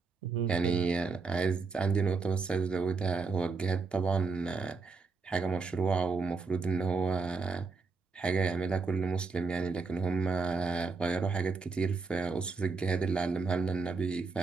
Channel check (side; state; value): left; quieter; 4.2 dB